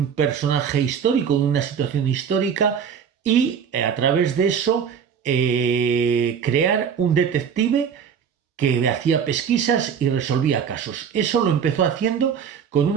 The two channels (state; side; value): quieter; left; 7.3 dB